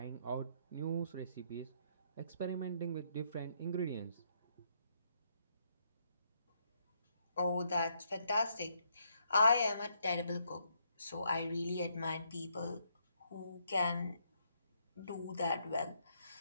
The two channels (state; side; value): inverted; both; correlation -0.73